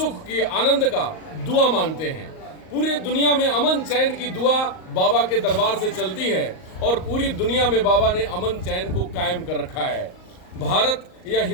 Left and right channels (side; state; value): right; late; 38 ms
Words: की, आनंद का दुआ मांगते हैं। पूरी दुनिया में अमन चैन की दुआ बाबा के दरबार से चलती है और पूरी दुनिया में बाबा ने अमन चैन को कायम कर रखा है। भारत या